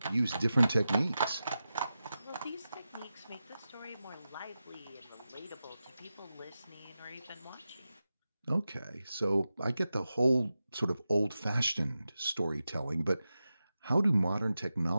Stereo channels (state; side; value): inverted; both; correlation -0.92